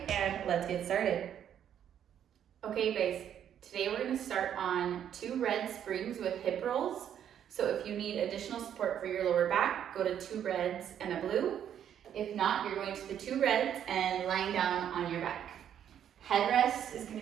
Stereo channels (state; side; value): quieter; left; 9.6 dB